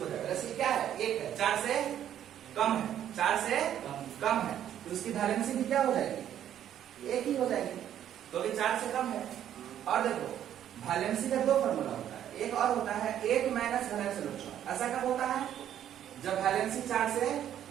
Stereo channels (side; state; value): left; quieter; 10.6 dB